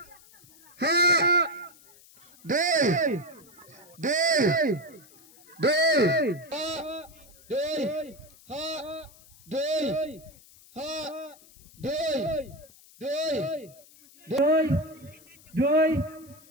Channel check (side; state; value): left; noise; hiss, 25 dB below the sound